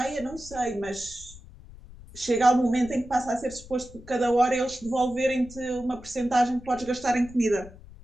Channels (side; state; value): left; noise; rumble, 18 dB below the sound